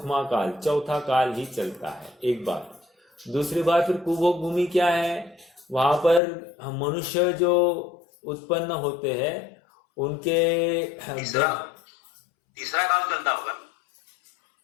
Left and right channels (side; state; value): right; drops out; at 6.2 s